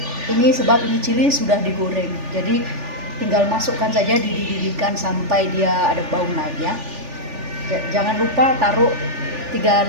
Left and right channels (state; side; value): late; left; 3.4 ms